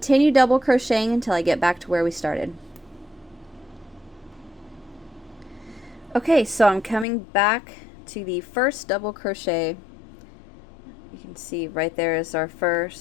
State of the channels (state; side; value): drops out; right; at 7.1 s